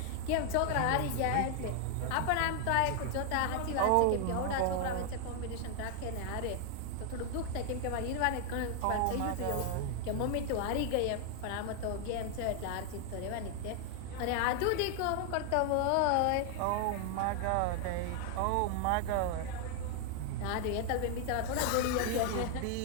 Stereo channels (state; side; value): different; both; correlation 0.00